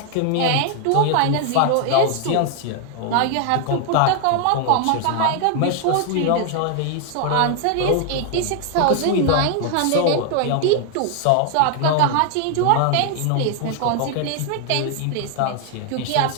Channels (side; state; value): both; different; correlation 0.00